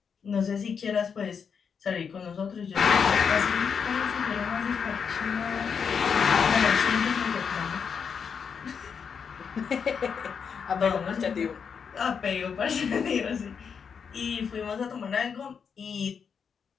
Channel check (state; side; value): quieter; right; 6.5 dB